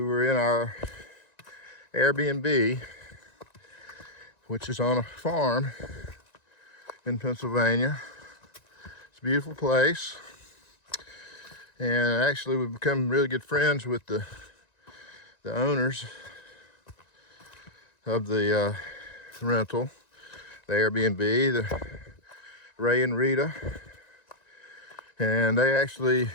were in our Airbnb, which is on a farm in Pennsylvania. It's a beautiful place, and actually we've become really good friends with the owners of the rental, the Airbnb, the Ray and Rita, and they actually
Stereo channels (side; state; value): right; late; 1.9 ms